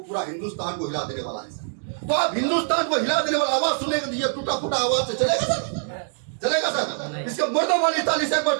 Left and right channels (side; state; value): left; silent; digital silence